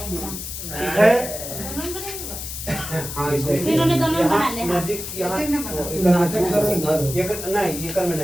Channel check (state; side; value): noise; left; hiss, 8 dB below the sound